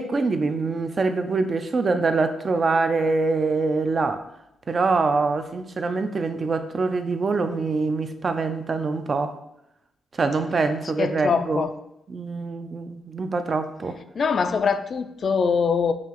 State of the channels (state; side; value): normal; both; correlation 0.83